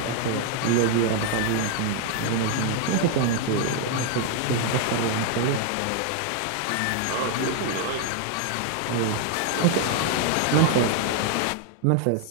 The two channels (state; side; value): different; both; correlation 0.00